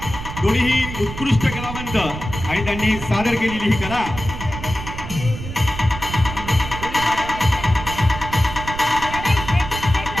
दोन्हीही उत्कृष्ट कलावंत आणि त्यांनी सादर केलेली ही कला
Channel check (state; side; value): noise; right; rumble, 9 dB below the sound